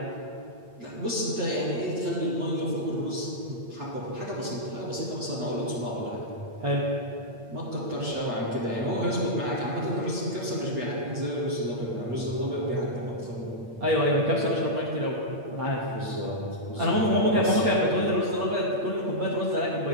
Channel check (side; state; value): left; late; 8.6 ms